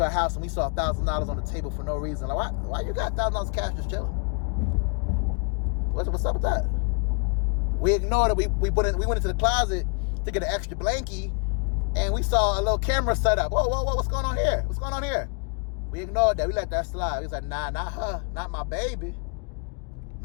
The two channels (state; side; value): quieter; right; 38.0 dB